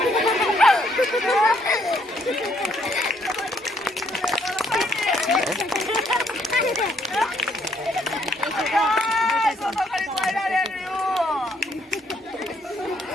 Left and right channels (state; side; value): normal; both; correlation 0.69